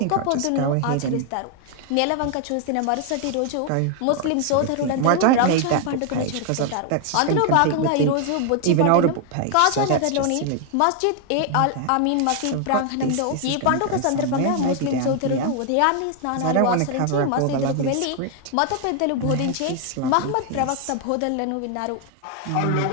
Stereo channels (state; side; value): different; both; correlation 0.00